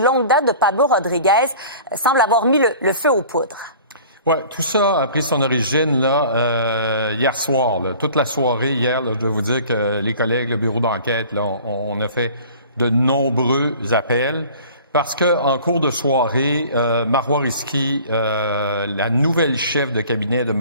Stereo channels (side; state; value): both; inverted; correlation -0.46